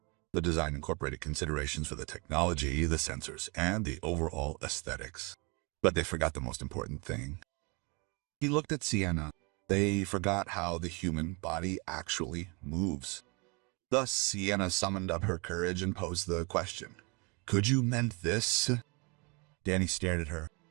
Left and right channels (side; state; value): left; quieter; 29.9 dB